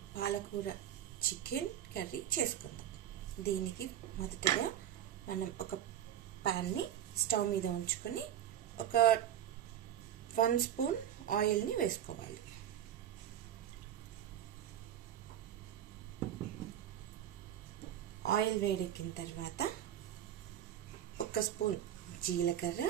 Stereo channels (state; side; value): quieter; left; 10.8 dB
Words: పాలకూర చికెన్ కర్రీ చేసుకుందాం. దీనికి మొదటగా మనం ఒక ప్యాన్ని స్టవ్ మీద ఉంచుకొని ఒక 1 స్పూన్ ఆయిల్ని వేసుకోవాలి. ఆయిల్ వేడెక్కిన తర్వాత 1 స్పూన్